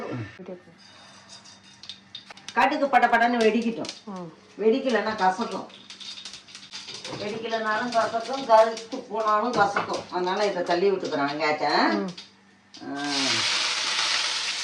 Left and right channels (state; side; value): identical; both; correlation 1.00